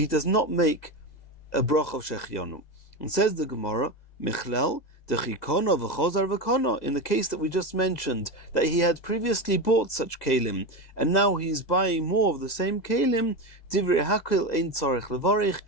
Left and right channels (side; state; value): right; late; 2.0 ms